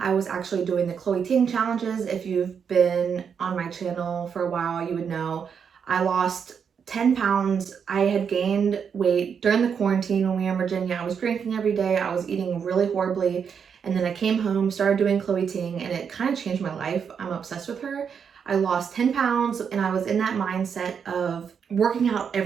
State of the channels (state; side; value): quieter; left; 6.9 dB